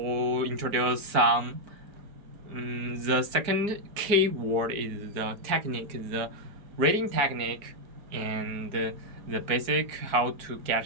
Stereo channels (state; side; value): late; left; 4.5 ms